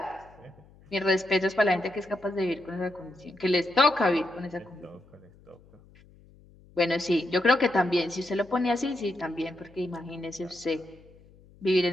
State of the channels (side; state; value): left; noise; hum, 26 dB below the sound